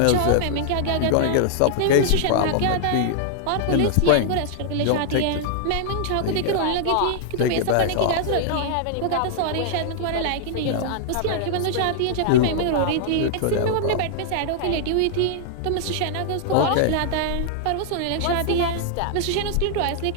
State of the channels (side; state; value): both; different; correlation -0.01